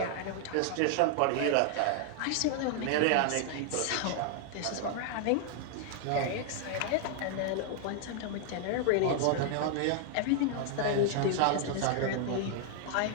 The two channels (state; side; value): different; both; correlation 0.00